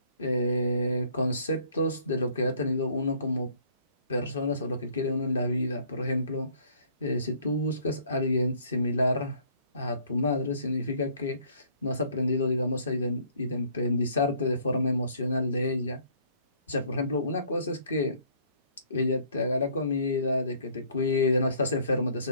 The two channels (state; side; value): inverted; both; correlation -0.59